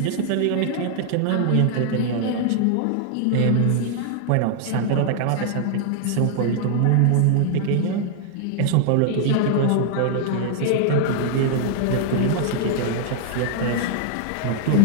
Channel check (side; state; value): both; different; correlation 0.00